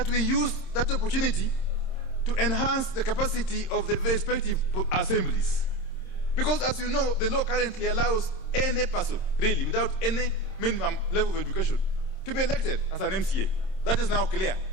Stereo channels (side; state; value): right; late; 26 ms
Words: we use that opportunity to enhance the capacity of the respective assemblies. Because as you know, the law currently allows any person, really, without any minimum level of education, to be elected as an MCA. That is now clear,